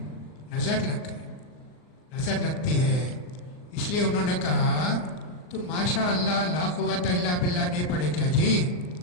نظر لگ گئی، نظر لگتی ہے. اس لیے انہوں نے کہا تو ماشاء اللہ لا قوت الا باللہ نہیں پڑھے کیا جی؟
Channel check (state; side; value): late; right; 39 ms